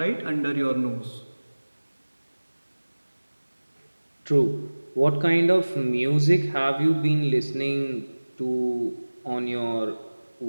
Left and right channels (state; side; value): inverted; both; correlation -1.00